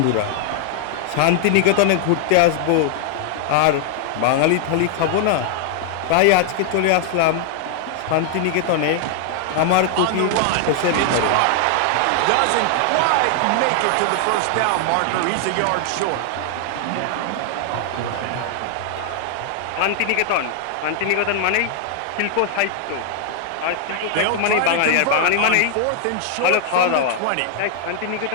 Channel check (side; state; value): both; different; correlation 0.00